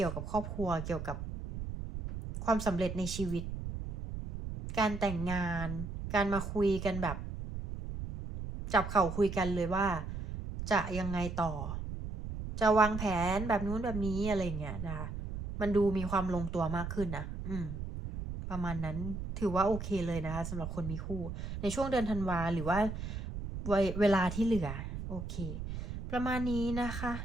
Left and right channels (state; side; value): noise; right; rumble, 6 dB below the sound